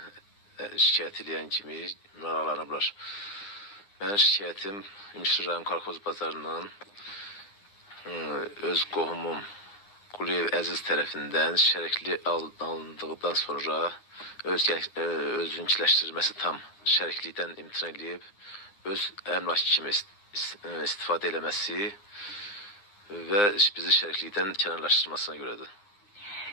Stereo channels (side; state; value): right; late; 9.8 ms